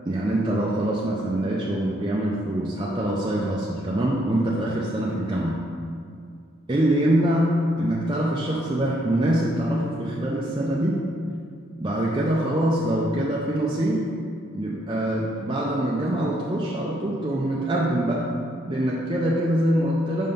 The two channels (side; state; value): both; normal; correlation 0.72